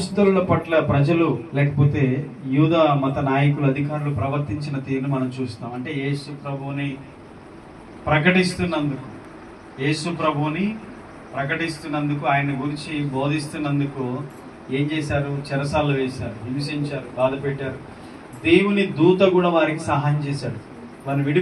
పట్ల ప్రజలు లేకపోతే యూద మత నాయకులు అధికారులు ప్రవర్తించిన తీరును మనం చూస్తాం. అంటే యేసు ప్రభువుని ప్రకటిస్తున్నందుకు ఆయన గురించి బోధిస్తున్నందుకు ఏం చేశారు? చెరసాల్లో వేశారు, హింసించారు, బాధ పెట్టారు. దేవుని దూత కూడా వారికి సహాయం చేశాడు, వారిని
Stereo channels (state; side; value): identical; both; correlation 1.00